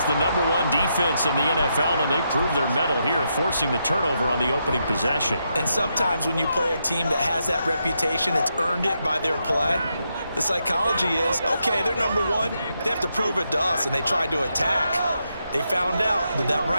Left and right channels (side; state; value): both; inverted; correlation -0.82